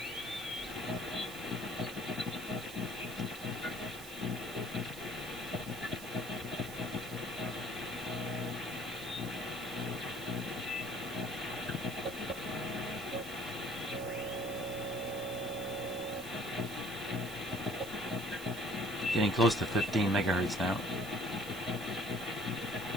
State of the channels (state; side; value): noise; right; hiss, 13 dB below the sound